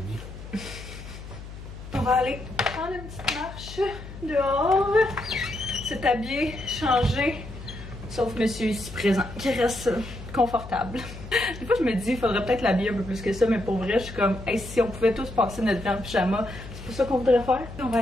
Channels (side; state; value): left; noise; hum, 13 dB below the sound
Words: On va aller prendre une petite marche dehors, s'habiller, changer, sauf monsieur ici présent, qui reste confortable. Des fois, je me dis, il faudrait peut-être l'habiller un peu plus que ça, mais pour vrai, je suis comme, hey, si on pouvait tous passer notre vie en pyjama, c'est pas ça qu'on voudrait faire. On va